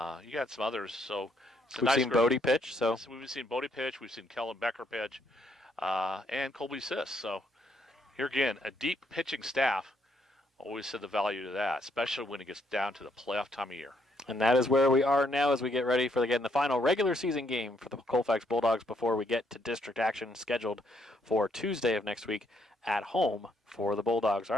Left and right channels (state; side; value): normal; both; correlation 0.72